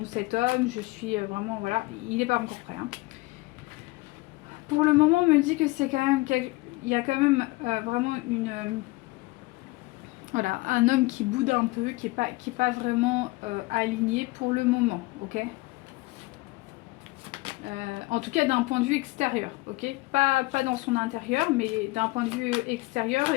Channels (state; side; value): quieter; right; 22.3 dB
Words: cet homme, je suis vraiment, voilà, il n'est pas encore prêt. Hein. Pour le moment, on me dit que c'est quand même, il y a quand même vraiment voilà, un homme qui boude un peu, qui est pas vraiment aligné pour le moment, ok ? En tout cas d'un point de vue extérieur, ok ? Pas dans son intérieur, mais d'un point de vue extérieur,